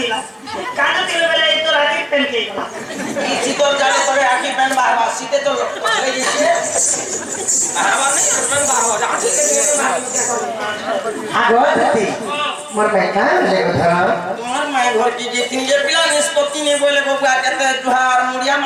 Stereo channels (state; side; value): identical; both; correlation 1.00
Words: বেলা এই তো রাতে পেন কে গলা এই শীতল জানে তোরে আকি প্যান বারবার শীতে তো এই দিছে বারবার নেই প্যান বারবার আকি কে নিয়ে আগো দুটি মোর বেটা লে কথা তোমার মায়ের ঘর কি যে তিন যে পিলা নিষ্পত্তি নেই বলে বাবা কেতে দুহার মুড়িয়া